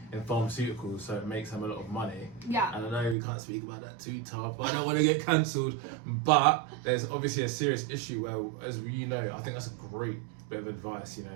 in pharmaceuticals, so it makes them a lot of money. Yeah. And I know we can't speak about that too tough. I don't want to get cancelled, but there's obviously a serious issue where, as you know, I think that's a great bit of advice.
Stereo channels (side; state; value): left; drops out; at 3.2 s